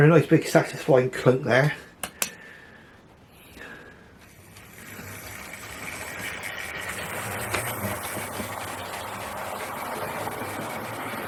nice big satisfying clunk there.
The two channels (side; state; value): both; identical; correlation 1.00